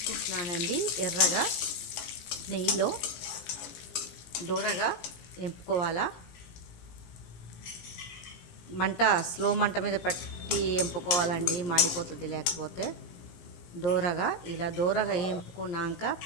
ఎర్రగా నెయ్యిలో దూరగా వేపుకోవాలా. మంట స్లో మంట మీద పెట్టి వేపుకోవాలండి, మాడిపోతుంది లేకపోతే. ఇలా దూరగా వేపుకున్నాక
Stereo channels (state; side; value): late; right; 17 ms